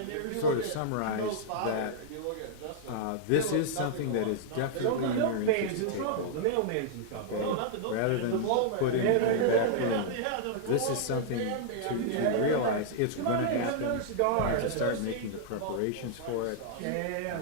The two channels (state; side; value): different; both; correlation -0.01